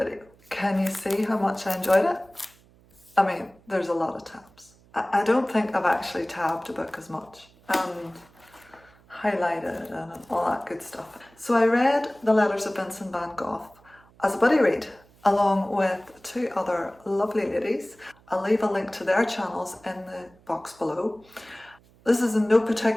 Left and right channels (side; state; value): right; noise; hum, 29 dB below the sound